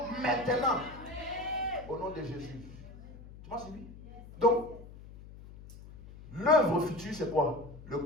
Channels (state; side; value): noise; left; hum, 17 dB below the sound